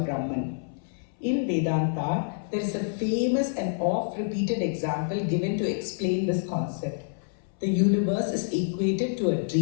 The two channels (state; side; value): silent; right; 60 dB below the other